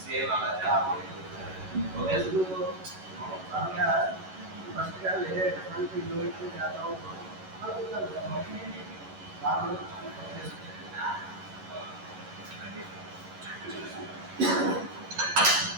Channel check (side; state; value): left; late; 11 ms